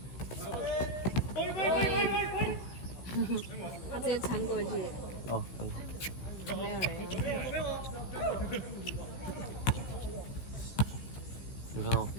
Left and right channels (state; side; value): late; right; 16 ms